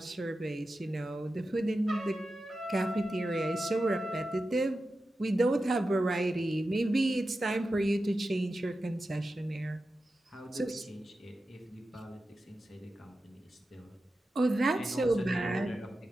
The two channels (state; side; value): normal; both; correlation 0.92